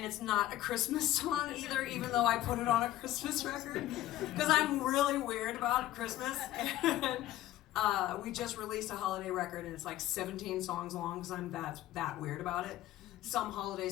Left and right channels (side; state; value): right; quieter; 14.3 dB